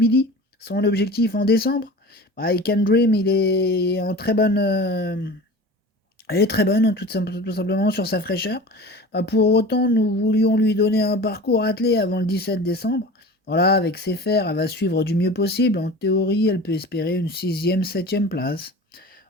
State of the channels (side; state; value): both; normal; correlation 0.37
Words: Son objectif en décembre. I Can Dream, il est en très bonne, elle est très bonne, hein, tout simplement, sur sa fraîcheur. Bah, pour autant, nous voulions lui donner un parcours attelé avant le 17 décembre. Voilà, avec ses fers, elle va suivre du mieux possible. En théorie, elle peut espérer une sixième, septième place.